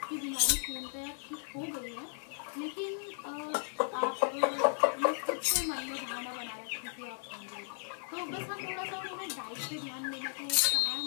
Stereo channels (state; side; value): silent; right; 54 dB below the other